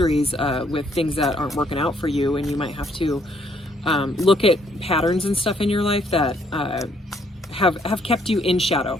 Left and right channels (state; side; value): normal; both; correlation 0.68